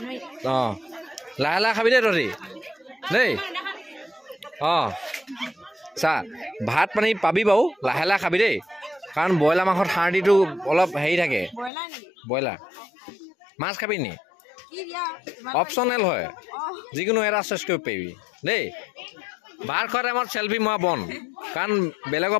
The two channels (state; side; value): drops out; right; at 11.7 s